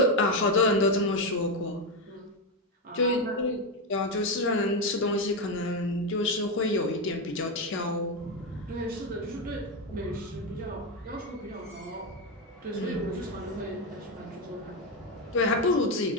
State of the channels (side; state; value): both; normal; correlation 0.10